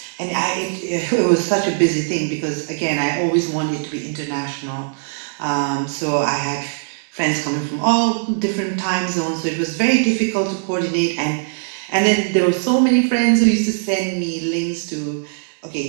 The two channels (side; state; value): left; silent; digital silence